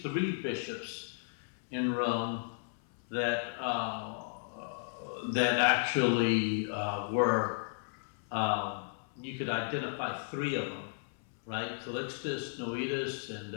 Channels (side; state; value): right; silent; 55 dB below the other